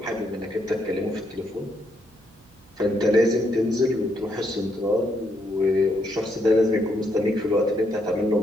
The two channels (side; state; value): right; noise; hum, 30 dB below the sound